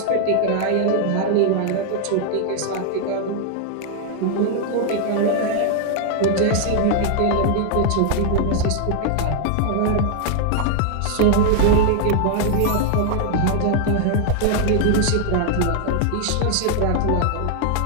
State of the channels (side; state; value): both; different; correlation 0.00